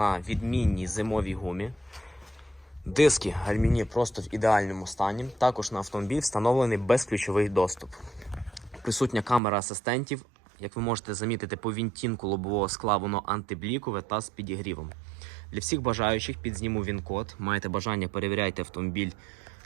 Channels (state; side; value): drops out; left; at 9.4 s